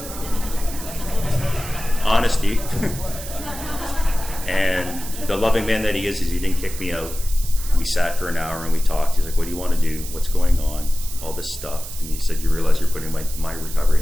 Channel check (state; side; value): noise; right; hiss, 11 dB below the sound